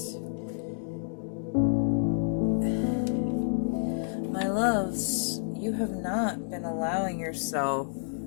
My loves, you have not been allowing yourself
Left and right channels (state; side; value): silent; right; digital silence